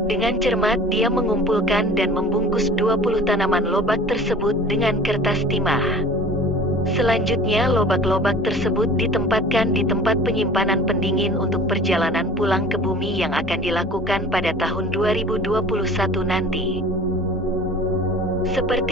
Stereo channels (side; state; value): both; normal; correlation 0.44